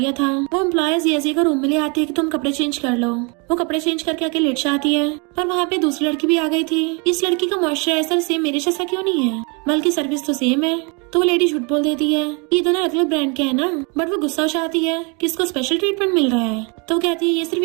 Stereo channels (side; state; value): left; quieter; 32.3 dB